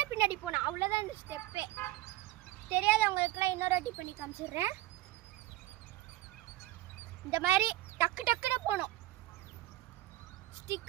பின்னாடி போனோம், அவ்வளோதான் இந்த ஸ்டெப்பே. தெரியாதவங்களுக்குலாம் இன்னொரு வாட்டி பண்ணி காமிச்சிடுறேன். இந்த மாதிரி டக்கு டக்குன்னு போகணும்.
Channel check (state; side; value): quieter; left; 17.0 dB